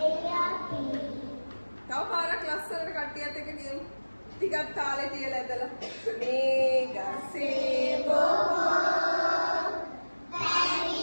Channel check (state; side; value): inverted; both; correlation -1.00